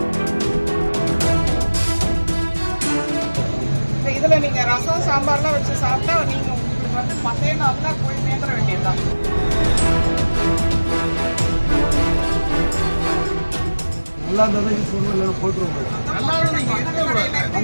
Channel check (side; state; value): both; inverted; correlation -1.00